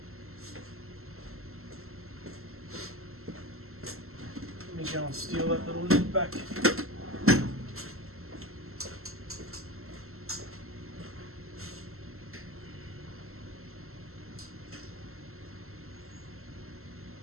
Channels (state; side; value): late; left; 0.62 ms